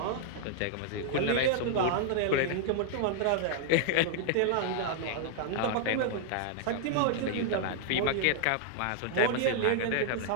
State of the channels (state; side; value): different; both; correlation -0.01